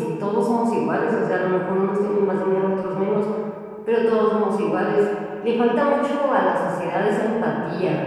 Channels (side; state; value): both; identical; correlation 1.00